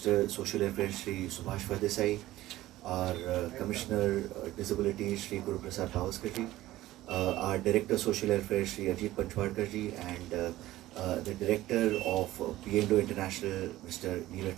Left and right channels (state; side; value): quieter; left; 15.9 dB